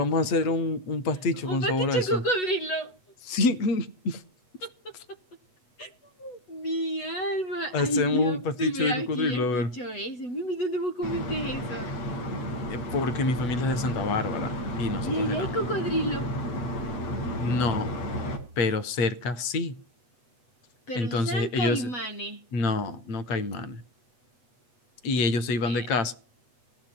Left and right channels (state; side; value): late; right; 8.2 ms